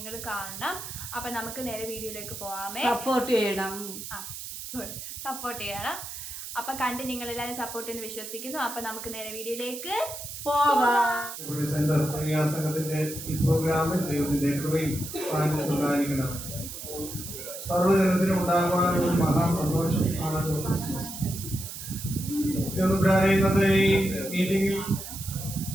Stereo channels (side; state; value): right; noise; hiss, 9 dB below the sound